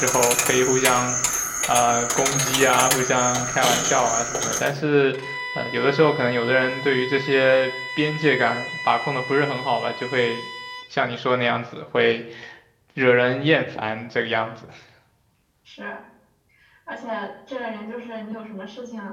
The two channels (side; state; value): both; identical; correlation 1.00